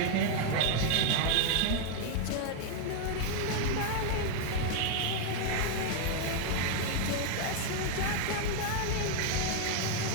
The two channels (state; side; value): different; both; correlation 0.00